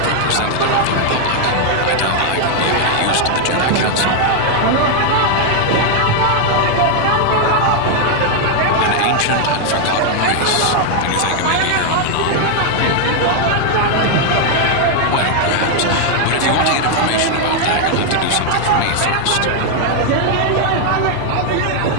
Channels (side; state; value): both; different; correlation 0.00